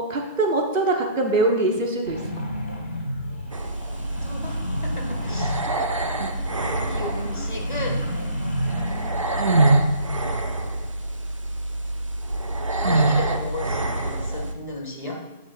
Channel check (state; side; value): inverted; both; correlation -0.55